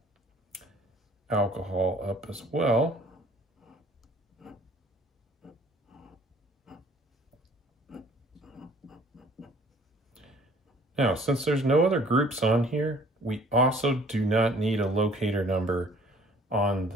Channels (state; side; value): normal; both; correlation 0.54